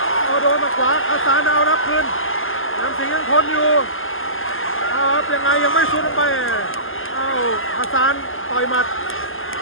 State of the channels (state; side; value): late; right; 0.59 ms